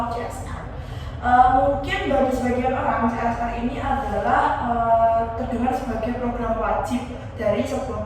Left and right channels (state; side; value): identical; both; correlation 1.00